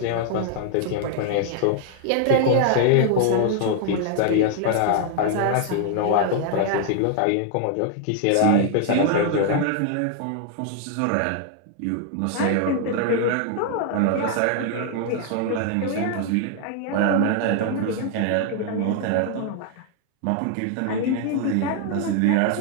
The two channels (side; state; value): both; different; correlation 0.00